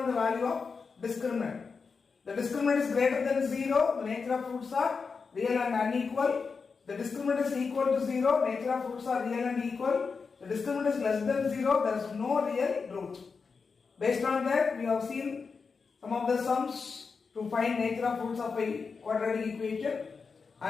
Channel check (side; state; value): right; quieter; 5.1 dB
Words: the value of discriminant. The discriminant is greater than 0, the nature of roots are real and unequal. The discriminant is equal to 0, nature of roots are real and equal. The discriminant is less than 0, there is no real root. Based on that, we have seen some of the sums to find nature of roots of a quadratic equation